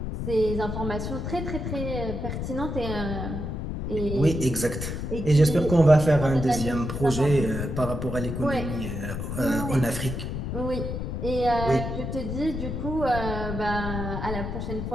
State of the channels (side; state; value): left; noise; rumble, 4 dB below the sound